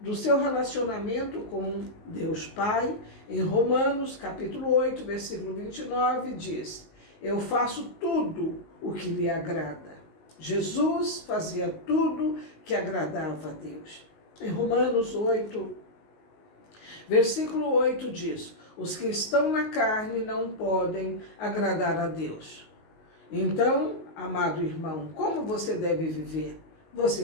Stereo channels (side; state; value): right; late; 19 ms